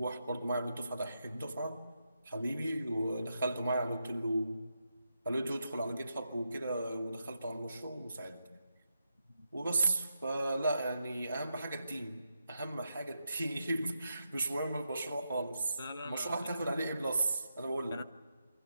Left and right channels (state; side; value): inverted; both; correlation -0.85